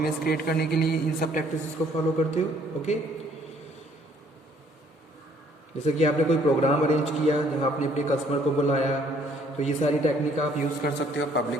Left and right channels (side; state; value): both; normal; correlation 0.62